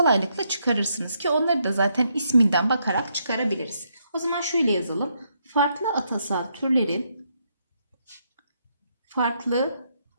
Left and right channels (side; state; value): both; inverted; correlation -0.77